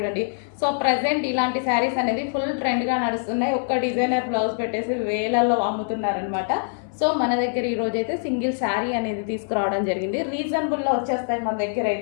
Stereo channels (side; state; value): right; silent; 59 dB below the other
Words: సో ప్రజెంట్ ఇలాంటి శారీస్ అనేది ఫుల్ ట్రెండ్గా నడుస్తున్నాయి. ఒక్క డిజైనర్ బ్లౌజ్ పెట్టేసి వేలల్లో అమ్ముతున్నారనమాట. సో మన దగ్గర ఈరోజు అయితే సింగిల్ శారీ అనేది తీసుకురావడం జరిగింది. రీజనబుల్లో వచ్చేస్తాయి మన దగ్గర